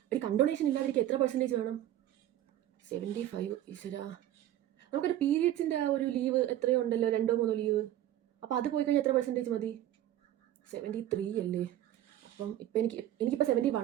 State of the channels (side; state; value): left; quieter; 12.8 dB